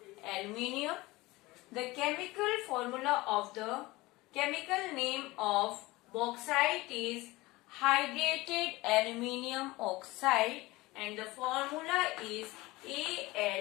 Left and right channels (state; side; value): quieter; right; 20.6 dB